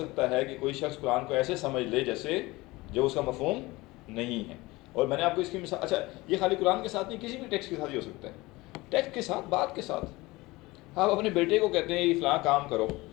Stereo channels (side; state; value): right; quieter; 21.2 dB